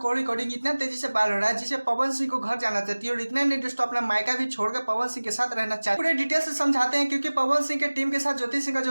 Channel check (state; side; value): inverted; both; correlation -1.00